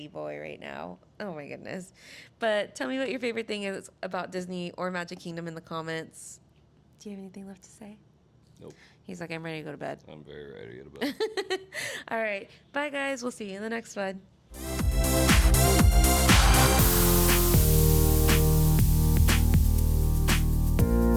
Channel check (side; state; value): both; identical; correlation 1.00